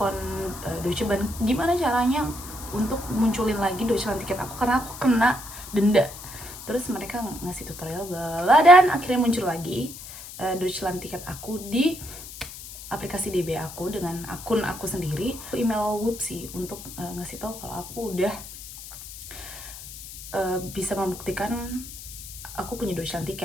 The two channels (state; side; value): noise; left; hiss, 13 dB below the sound